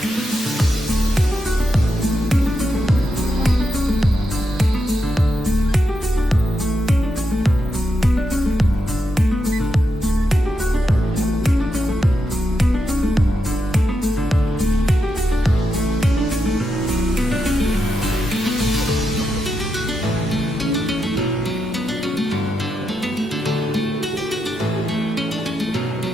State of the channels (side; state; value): both; normal; correlation 0.84